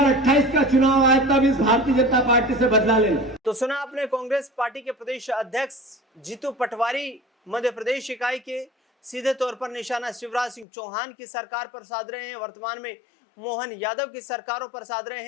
का चुनाव आए तब इस भारतीय जनता पार्टी से बदला लेना। तो सुना आपने कांग्रेस पार्टी के प्रदेश अध्यक्ष जीतू पटवारी मध्य प्रदेश इकाई के सीधे तौर पर निशाना शिवराज सिंह चौहान की सरकार पर साध रहे हैं, वर्तमान में मोहन यादव की सरकारों पर साध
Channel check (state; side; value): drops out; right; at 10.7 s